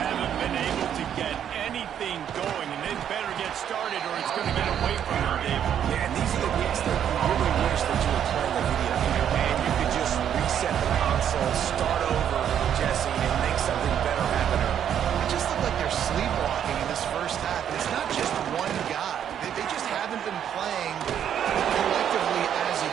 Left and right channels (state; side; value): quieter; left; 9.4 dB